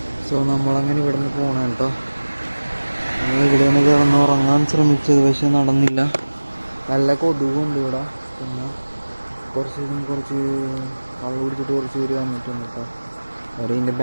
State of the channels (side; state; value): both; inverted; correlation -1.00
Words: സോ നമ്മളങ്ങനെ ഇവിടെ നിന്ന് പോകണം കേട്ടോ. ഇവിടെ നിന്ന് കിടന്ന് ഉറങ്ങാൻ ശ്രമിച്ചത്, പക്ഷെ നടന്നില്ല. നല്ല കൊതുകുണ്ട് ഇവിടെ. പിന്നെ കുറച്ച് കള്ളു കുടിച്ചിട്ട് കുറച്ച് പേര് വന്നിട്ടുണ്ട് കേട്ടോ. അവർ ഇതിൻ്റെ